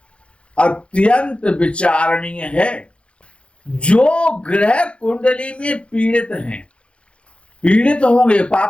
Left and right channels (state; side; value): late; right; 0.059 ms